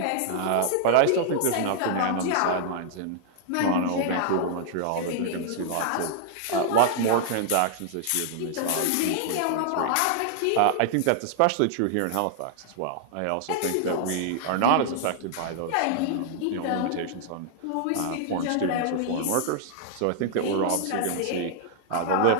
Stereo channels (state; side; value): different; both; correlation -0.01